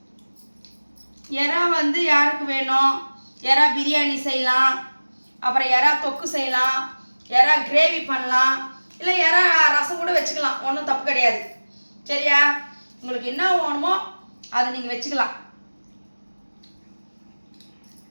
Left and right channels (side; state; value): both; inverted; correlation -1.00